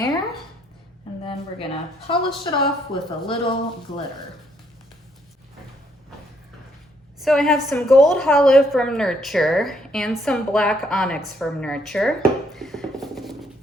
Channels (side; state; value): both; normal; correlation 0.70